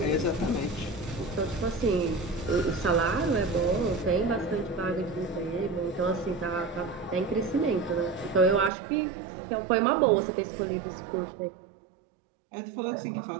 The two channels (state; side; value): drops out; left; at 8.7 s